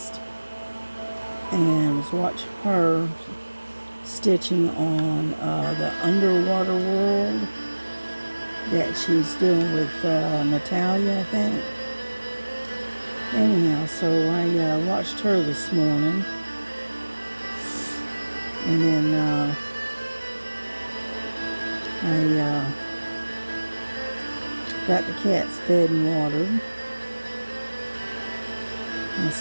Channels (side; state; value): both; inverted; correlation -1.00